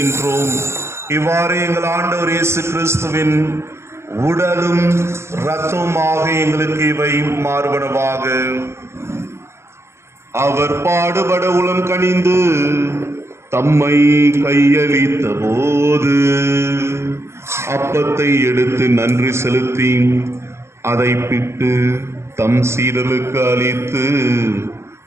இவ்வாறு எங்கள் ஆண்டவர் இயேசு கிறிஸ்துவின் உடலும் இரத்தமுமாக எங்களுக்கு இவை மாறுபடவாக. அவர் பாடுபட உளம் கனிந்து தம்மை கையளித்த போது அப்பத்தை எடுத்து நன்றி செலுத்தி அதை பிட்டு தம் சீடர்களுக்கு அளித்து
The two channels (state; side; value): late; left; 0.13 ms